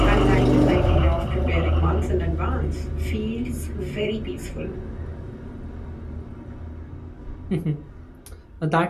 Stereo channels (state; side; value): identical; both; correlation 1.00